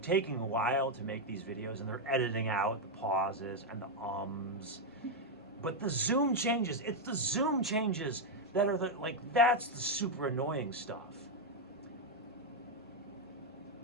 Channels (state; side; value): normal; both; correlation 0.02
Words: taking a while to make these videos and they're editing out the pauses and the ums. But the zoom changes, it's the zoom changes that are like, that's the super annoying stuff.